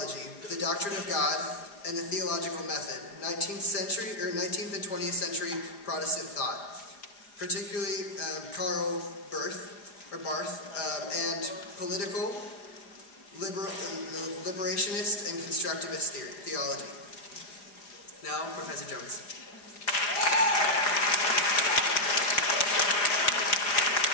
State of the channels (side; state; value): right; late; 4.9 ms